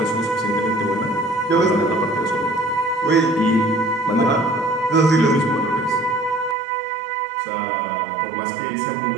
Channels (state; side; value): drops out; left; at 6.6 s